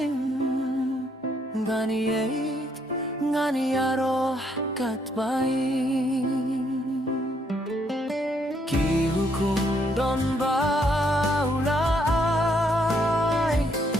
Ngani yeit ngani aroh kat baing Ki hukum don baulai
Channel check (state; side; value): normal; both; correlation 0.72